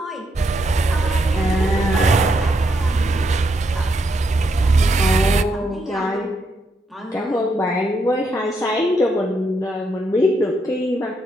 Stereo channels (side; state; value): both; normal; correlation 0.78